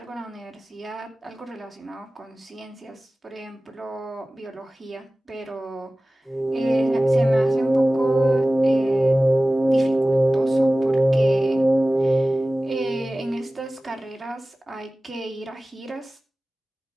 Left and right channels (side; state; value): both; normal; correlation 0.97